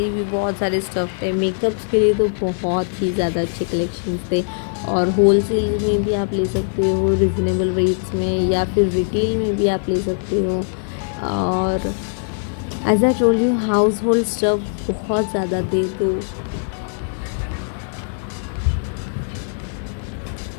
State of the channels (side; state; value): right; silent; digital silence